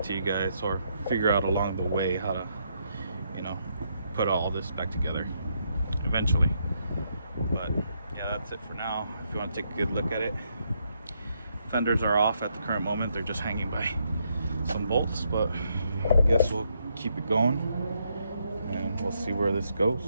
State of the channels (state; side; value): inverted; both; correlation -0.77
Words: to you guys, or figure out along the way how to, you know, put all this back together eventually. But yeah, that's it for now. If you want to take a good look at it, fenders are off at the current moment. They're just hanging by some bolts, but I guess we'll keep it going and we'll see where this